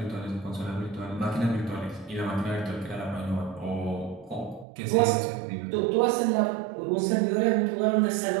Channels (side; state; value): left; drops out; at 4.7 s